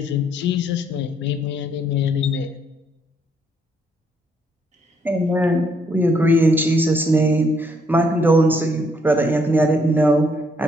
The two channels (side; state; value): both; normal; correlation 0.70